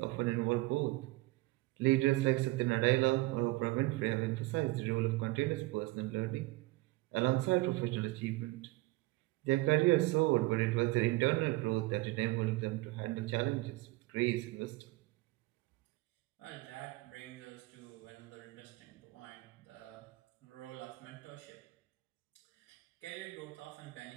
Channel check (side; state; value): left; quieter; 20.8 dB